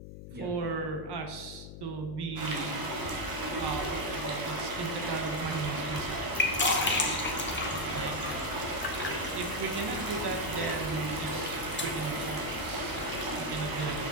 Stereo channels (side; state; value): left; noise; hum, 11 dB below the sound